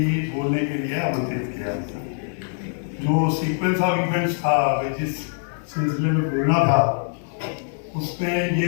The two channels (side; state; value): right; silent; 63 dB below the other